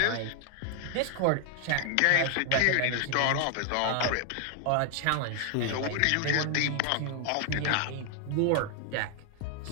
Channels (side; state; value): both; different; correlation 0.00